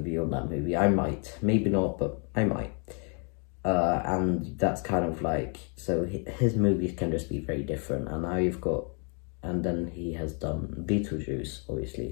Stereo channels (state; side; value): quieter; right; 37.7 dB